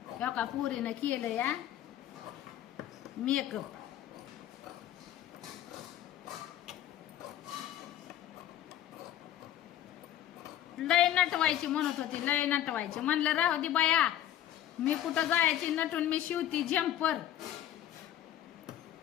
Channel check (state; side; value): quieter; right; 11.7 dB